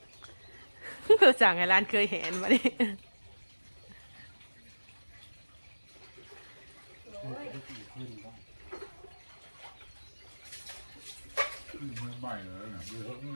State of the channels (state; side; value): inverted; both; correlation -1.00